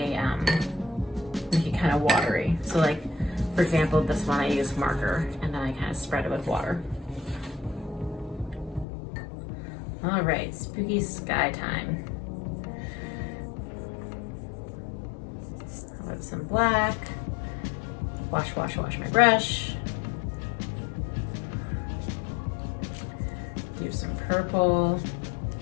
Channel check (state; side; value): drops out; right; at 8.8 s